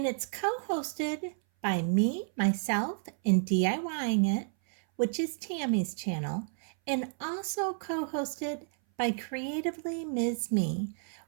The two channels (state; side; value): silent; left; 57 dB below the other